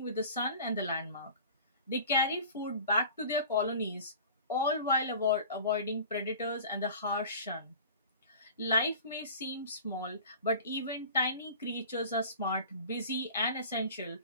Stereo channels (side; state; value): both; inverted; correlation -0.41